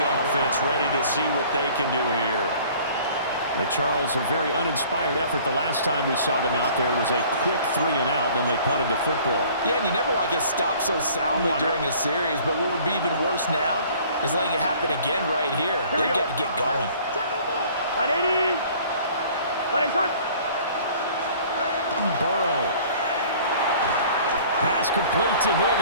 offense ready to see what they can do here. And Charles, a very uninspired effort. The last time we saw them out there was a quick 3 and out, then they punted the football. Yeah, and you never want to get stopped so soundly during a series, but what would be even worse now is letting it happen again right here. They've got to get going. 180. Burrow. Pass complete to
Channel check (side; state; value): both; inverted; correlation -0.51